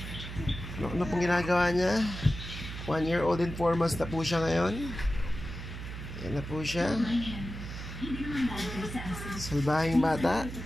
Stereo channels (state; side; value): noise; right; hum, 9 dB below the sound